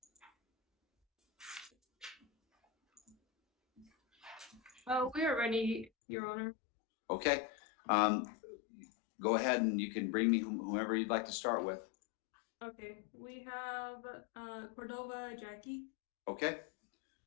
We are ready, Your Honor. Okay, go ahead and you can bring me whomever you'd like to start with. Okay, we have Cordova Jackie. Okay.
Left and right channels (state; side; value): drops out; right; at 5.9 s